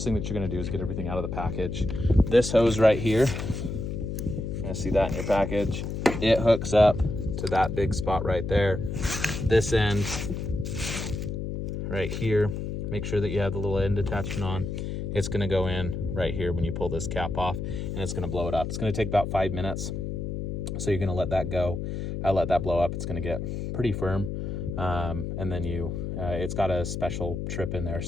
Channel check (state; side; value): noise; left; hum, 4 dB below the sound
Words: thing that you're gonna do is get everything out of the package. This hose right here, you're gonna see that in your package. It hooks up to that big spot right there. This end right here, make sure that you have the little end attachment on. It's gonna go in right here when you pull this cap off, and it's gonna blow it up. It's gonna take about 5 minutes. So you're gonna let that go. Let that blow up. It's gonna get pretty firm. And then it's got a special trip in there